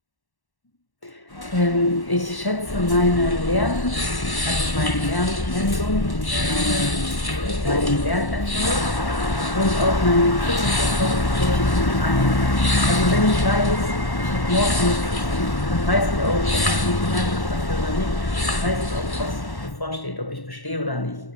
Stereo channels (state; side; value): late; right; 1.1 ms